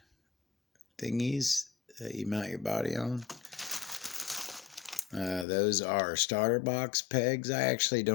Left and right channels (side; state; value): right; drops out; at 5.5 s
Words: thingies that you mount your body on. Those are starter box pegs. I actually